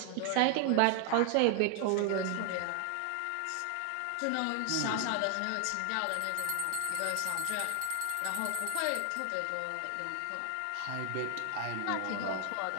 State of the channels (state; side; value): different; both; correlation 0.00